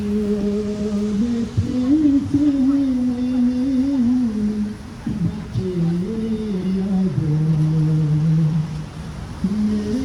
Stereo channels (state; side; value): identical; both; correlation 1.00